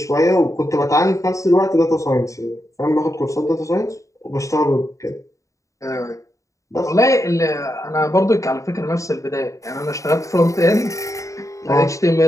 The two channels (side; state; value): right; late; 0.15 ms